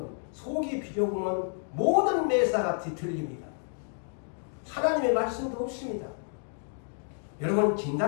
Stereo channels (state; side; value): silent; right; 58 dB below the other